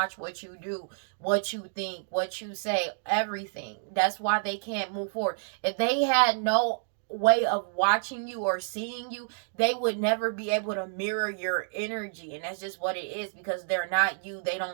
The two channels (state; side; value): silent; left; digital silence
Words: what you do, what you think, what you say, everything. That's why they can't move forward. If they had no way of watching you or seeing you, they would never be able to mirror your energy. And that's just what it is, because they're not you. They